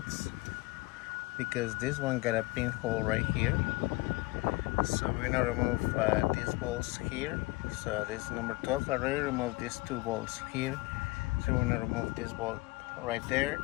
because this one got a pinhole right here. So we're gonna remove these bolts here. So this is number 12. I already removed these two bolts here. So we're gonna remove this bolt right there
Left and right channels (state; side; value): quieter; right; 22.4 dB